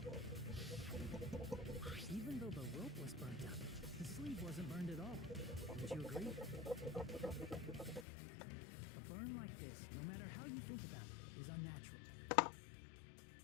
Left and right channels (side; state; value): right; drops out; at 8.1 s